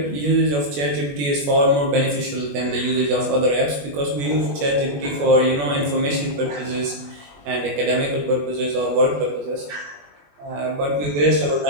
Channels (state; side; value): late; left; 21 ms